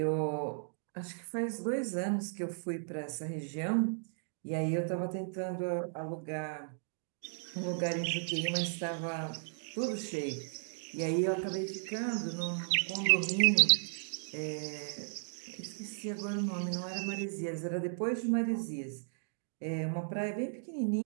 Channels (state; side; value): silent; left; digital silence